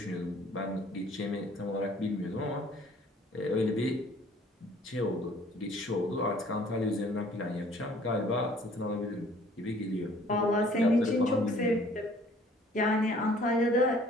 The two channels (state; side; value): normal; both; correlation 0.56